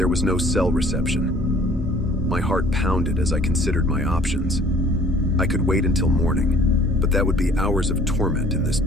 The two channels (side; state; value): both; normal; correlation 0.54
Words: was no cell reception. My heart pounded as I considered my options. I could wait until morning, but that would be hours of torment in this